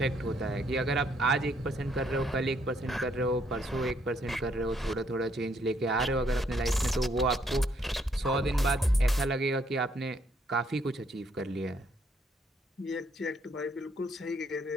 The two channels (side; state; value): both; normal; correlation 0.70